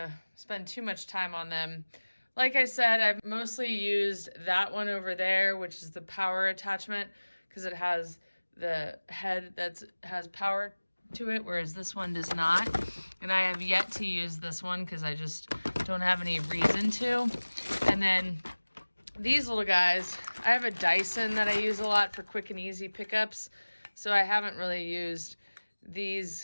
spend too much time on them. Like I said, I've mostly used that one over there, which is the power attachment, because it has the head that has power to it, whereas this one does not. And I have yet to use this one because I just don't have any reason to. And then these little guys, I have a Dyson that I use a lot for quick and easy pickups, so I haven't really used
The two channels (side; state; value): both; inverted; correlation -1.00